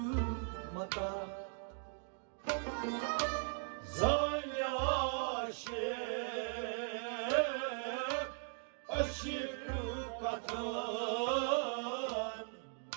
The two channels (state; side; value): silent; left; 52 dB below the other